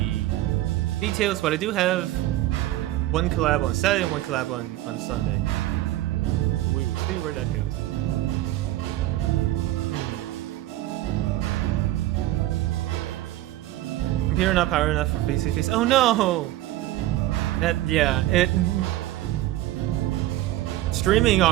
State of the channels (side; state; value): left; quieter; 15.5 dB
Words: details, but I do have one collab on Saturday and one collab on Sunday. We will see where that goes. Computer not power enough for face-to-face. Oh no! Streaming